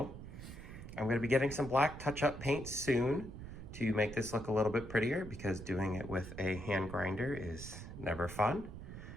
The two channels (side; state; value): right; noise; rumble, 11 dB below the sound